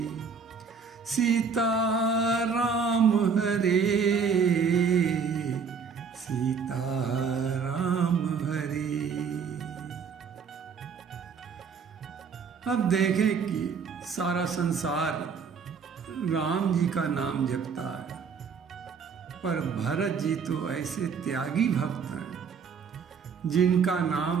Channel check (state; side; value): quieter; left; 5.9 dB